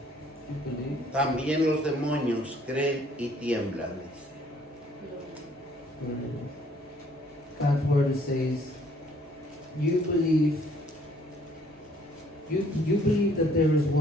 You believe? También los demonios creen y tiemblan, dice. God's word says, you believe that there is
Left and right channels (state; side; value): normal; both; correlation 0.62